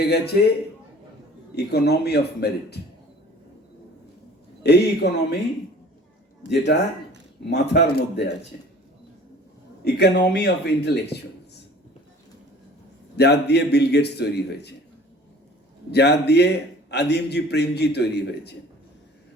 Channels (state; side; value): normal; both; correlation 0.48